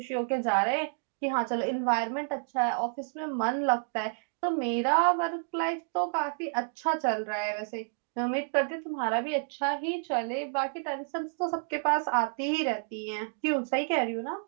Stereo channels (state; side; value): silent; left; digital silence